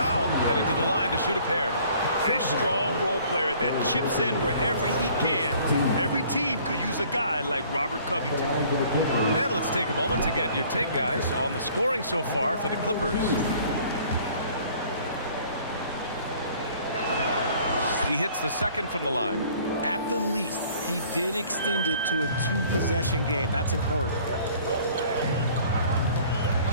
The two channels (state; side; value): inverted; both; correlation -0.54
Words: headed to the line to shoot a pair. A strong role player that chips in wherever he can. Every team could use a guy like Robert Covington. And let's take a moment to get your take, guys, on the scoring so far for the Clippers. He hits the second from the line. At the least, he did extend it to a 2-possession game. That's important.